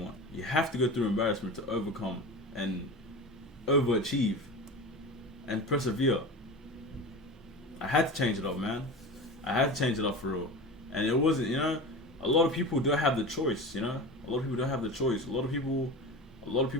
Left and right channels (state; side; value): normal; both; correlation 0.30